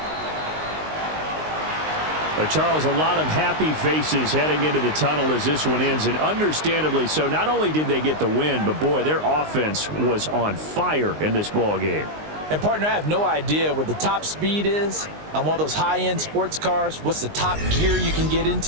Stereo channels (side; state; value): left; late; 19 ms